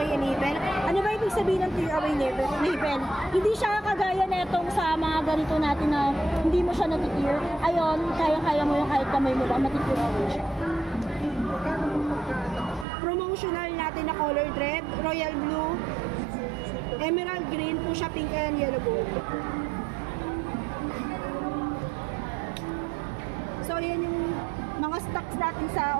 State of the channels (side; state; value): left; drops out; at 12.9 s